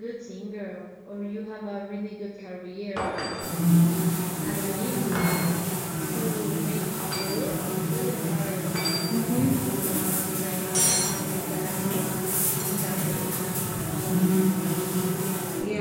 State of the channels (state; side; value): identical; both; correlation 1.00